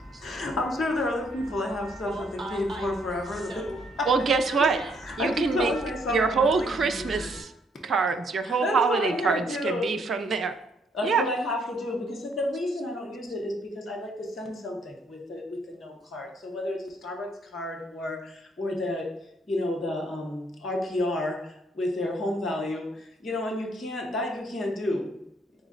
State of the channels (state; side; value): normal; both; correlation 0.69